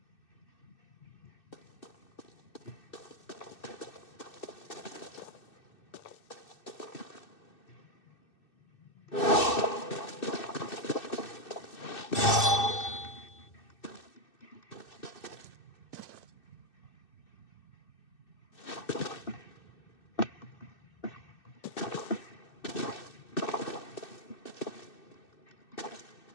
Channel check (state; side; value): late; right; 2.6 ms